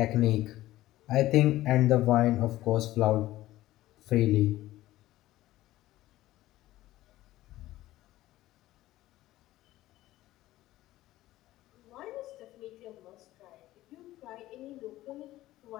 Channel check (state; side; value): quieter; right; 15.9 dB